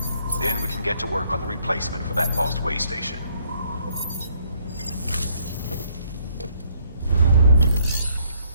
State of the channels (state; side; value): inverted; both; correlation -0.67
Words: Then we can get to work on the replacement for that lost Waystation.